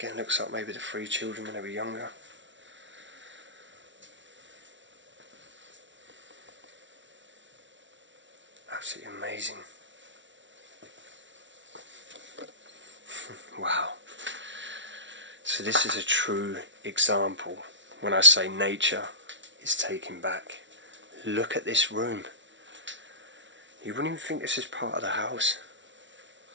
looks like maybe the 3 children when they were younger. Absolutely amazing. Wow. So this is a true example when I say nature is taking back. Look at this room. You wouldn't even think this is part of the house.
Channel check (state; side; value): late; left; 0.55 ms